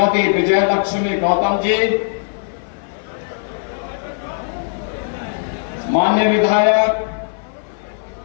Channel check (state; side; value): silent; right; 57 dB below the other